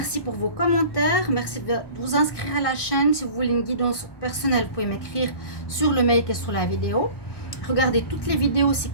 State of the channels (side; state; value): right; late; 1.2 ms